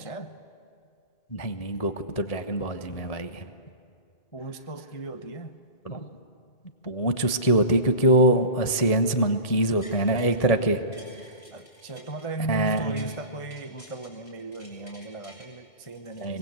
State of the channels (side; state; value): right; late; 1.8 ms